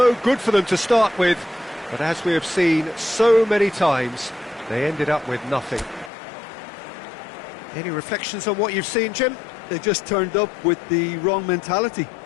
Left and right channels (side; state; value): right; drops out; at 6.1 s